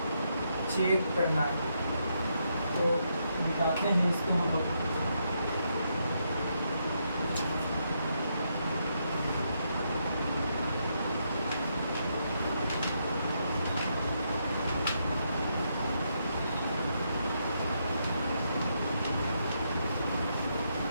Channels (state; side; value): inverted; both; correlation -0.79